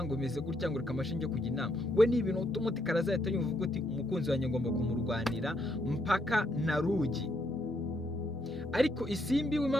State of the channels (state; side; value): normal; both; correlation 0.75